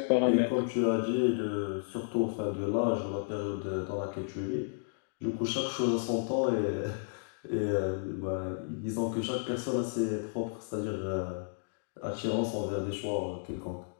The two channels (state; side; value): silent; right; digital silence